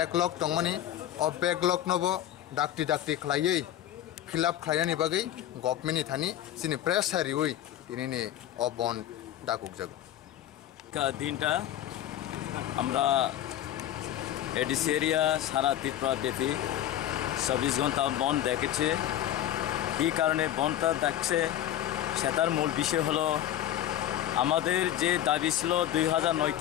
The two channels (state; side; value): quieter; right; 12.1 dB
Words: दंमानि अ बेकलग नबो डाक्टी डाक्टी खालायै फिलआप खालायनानि बागै गभर्नमेन्टनि थानि जोंनि प्रेस हारियै दिनैनि अ बन्द दाकुकजागो দিনটা আমরা এডিসি এরিয়া সারা ত্রিপুরা ব্যাপী 24 ঘন্টা বন্ধ দেখেছে এই কারণে বন্ধটা দেখছে সেটার মূল বিষয় হলো আমাদের যে দাবি ছিল